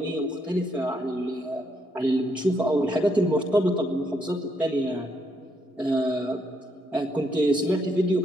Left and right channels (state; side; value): normal; both; correlation 0.75